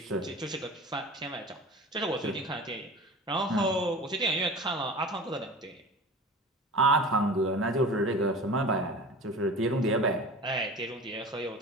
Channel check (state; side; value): normal; both; correlation 0.36